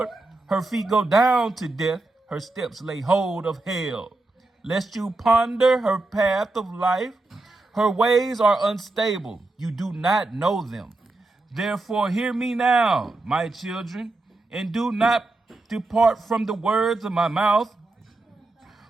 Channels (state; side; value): quieter; left; 3.1 dB